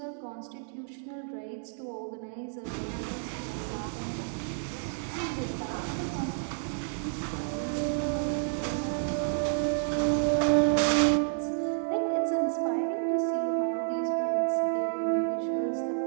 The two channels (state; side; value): silent; left; digital silence